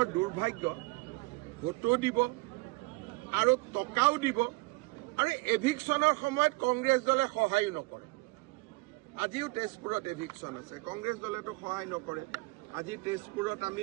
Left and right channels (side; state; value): left; quieter; 24.4 dB